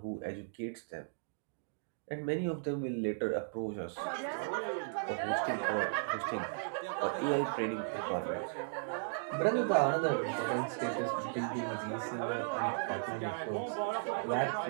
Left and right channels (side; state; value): left; silent; digital silence